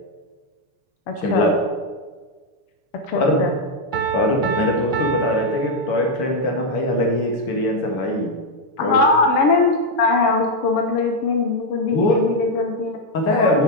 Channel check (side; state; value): right; late; 6.8 ms